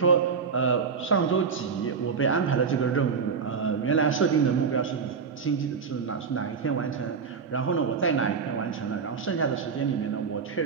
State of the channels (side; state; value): left; quieter; 5.8 dB